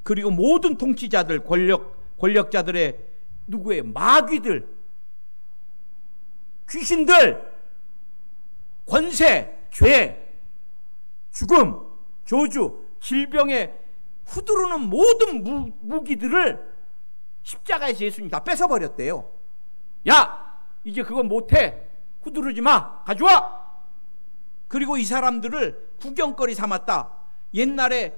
그리고 모든 통치자들, 권력자들의 누구예요? 마귀들, 귀신들, 권세, 죄, 죽음, 저주, 질병에 후두르는 모든 무기들을 십자가에서 예수님이 다 뺏어버렸대요. 야, 이제 그건 못해, 후두르지 마, 가져와. 그리고 이 사람들을 구경거리 삼았다. 옛날에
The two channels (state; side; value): inverted; both; correlation -1.00